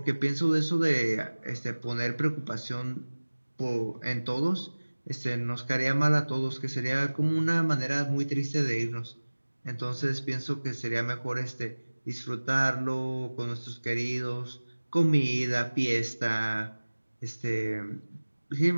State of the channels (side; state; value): both; inverted; correlation -1.00